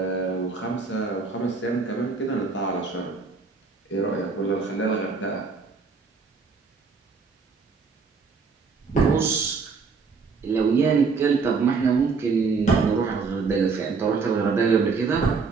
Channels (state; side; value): quieter; left; 4.8 dB